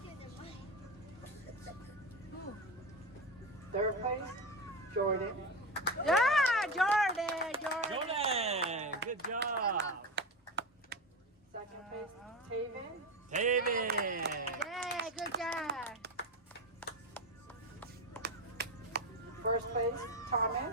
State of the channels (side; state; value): both; normal; correlation 0.19